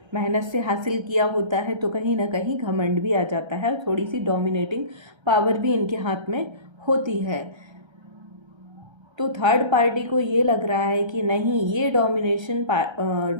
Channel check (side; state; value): left; late; 1.3 ms